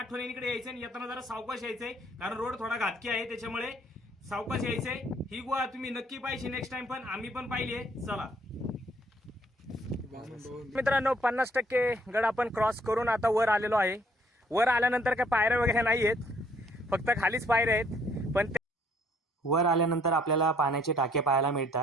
यायचं आणि येताना जरा सावकाश यायचंय, कारण रोड थोडा घातकी आहे, त्याच्यामुळे सावकाश यायचंय. ही गुहा तुम्ही नक्की पाहिजे नेक्स्ट टाइम, पण आम्ही पण पाहिली आहे. चला मित्रांनो, 50% गड आपण क्रॉस करून आता वर आलेलो आहे. वर आल्यानंतर काय पायऱ्या वगैरे नाही आहेत, फक्त खालीच पायऱ्या आहेत. पण वर आल्यानंतर आपल्याला पाण्याचे टाके पाहायला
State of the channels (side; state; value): both; normal; correlation 0.63